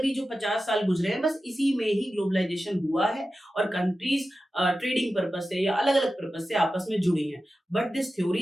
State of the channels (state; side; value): normal; both; correlation 0.93